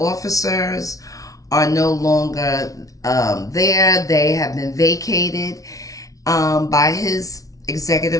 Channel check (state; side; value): late; right; 0.17 ms